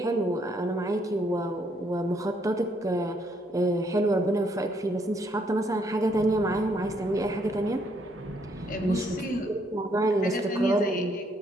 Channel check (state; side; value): normal; both; correlation 0.70